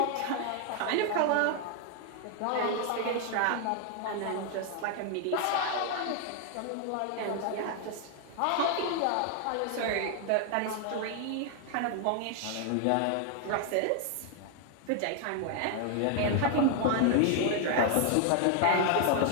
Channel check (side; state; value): both; different; correlation 0.00